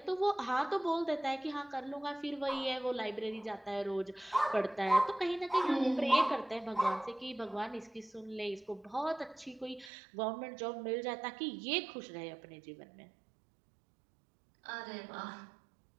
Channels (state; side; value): drops out; left; at 9.9 s